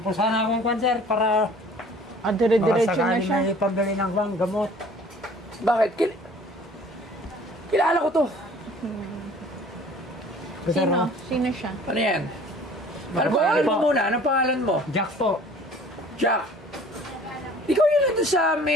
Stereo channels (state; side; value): normal; both; correlation 0.50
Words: po sana akong kwan, sir, para Dire-diretso na siya. may pambili ng gamot. Bakit? Kilala ko to. Sino? Sino siya? Ano yan? Ano pangalan mo muna? Anong pangalan mo? Jack po. Jack. Ikaw yun nandun sa